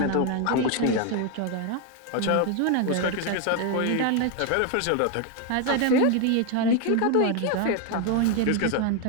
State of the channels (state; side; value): different; both; correlation 0.01